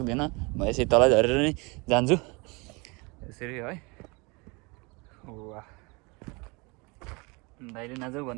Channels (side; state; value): left; quieter; 27.9 dB